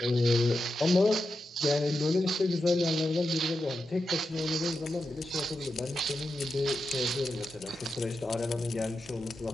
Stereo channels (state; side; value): normal; both; correlation 0.88